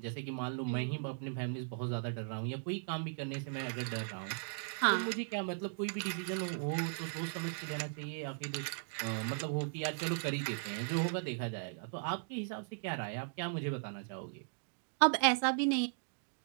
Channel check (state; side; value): silent; left; digital silence